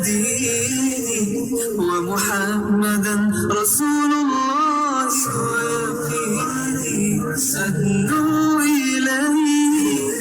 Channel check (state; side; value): identical; both; correlation 1.00